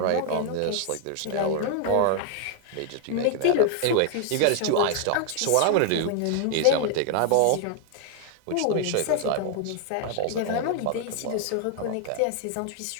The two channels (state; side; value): different; both; correlation 0.00